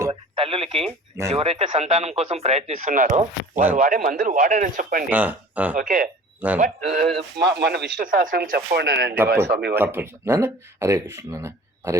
తల్లులకి ఎవరైతే సంతానం కోసం ప్రయత్నిస్తున్నారో వాళ్ళు వాడే మందులు వాడని చెప్పండి. ఓకే, బట్ మన విష్ణు సహస్రనామం చెప్పండి అండి స్వామి. హరే కృష్ణ, హరే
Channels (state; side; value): normal; both; correlation 0.44